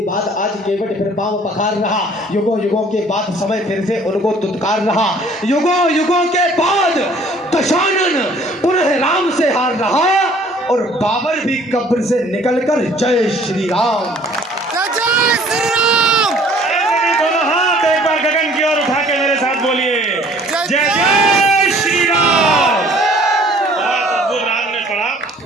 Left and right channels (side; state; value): both; normal; correlation 0.55